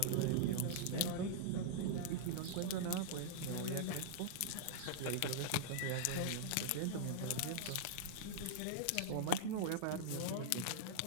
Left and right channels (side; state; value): both; different; correlation -0.01